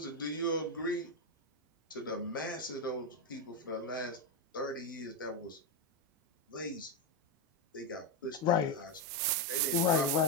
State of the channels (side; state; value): both; normal; correlation 0.08